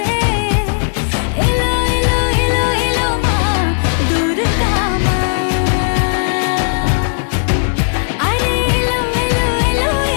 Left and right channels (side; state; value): right; silent; digital silence